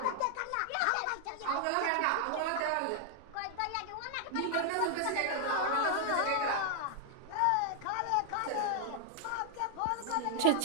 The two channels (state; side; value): different; both; correlation 0.00